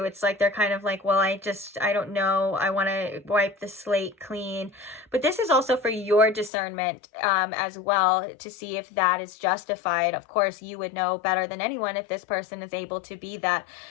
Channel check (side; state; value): right; drops out; at 6.5 s